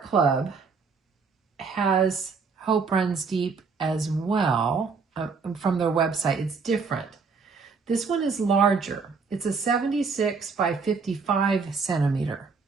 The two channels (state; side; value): quieter; left; 5.0 dB